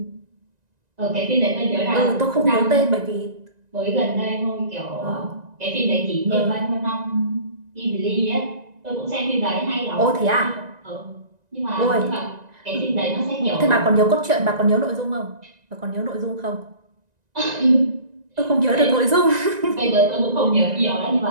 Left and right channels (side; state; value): left; late; 1.9 ms